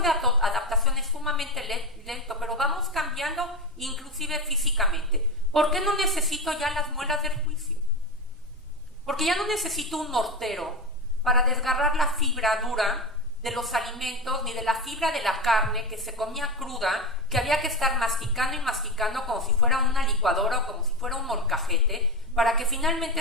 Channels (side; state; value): both; normal; correlation 0.17